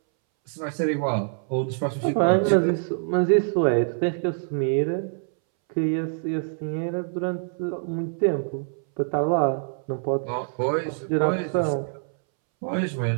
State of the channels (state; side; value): silent; left; 62 dB below the other